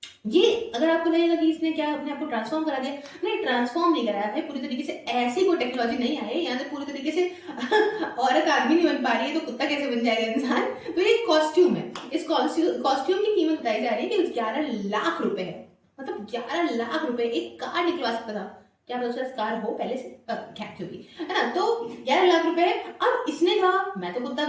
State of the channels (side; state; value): both; identical; correlation 1.00